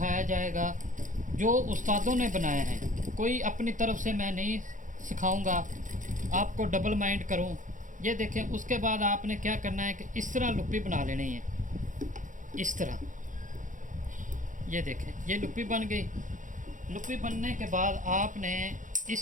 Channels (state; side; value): late; left; 0.37 ms